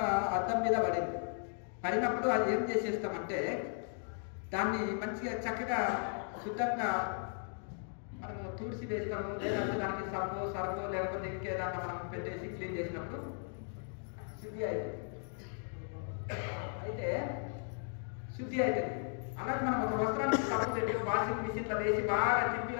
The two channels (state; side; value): silent; right; 54 dB below the other